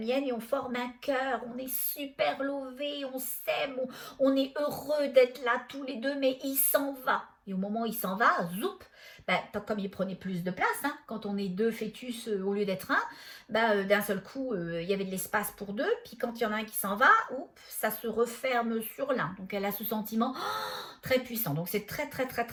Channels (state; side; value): identical; both; correlation 1.00